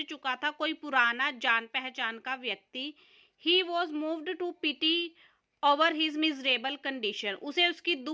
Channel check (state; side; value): identical; both; correlation 1.00